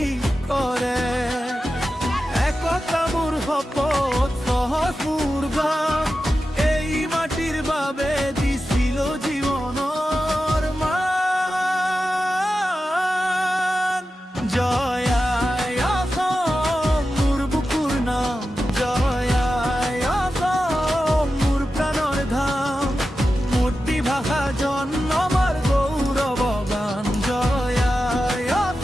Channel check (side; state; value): both; normal; correlation 0.92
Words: কৰে একতা মোৰ শপত সহজ মোৰ গান এই মাটিৰ বাবে দিছিল জীৱনৰ মান জয় আই অসম মোৰ বুকুৰ নাম জয় আই অসম মোৰ প্ৰাণৰ ধাম মাতৃভাষা জন্মৰ গৌৰৱ গান জয় আই